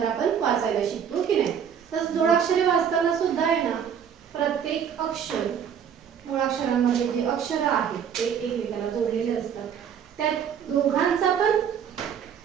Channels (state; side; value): quieter; left; 8.0 dB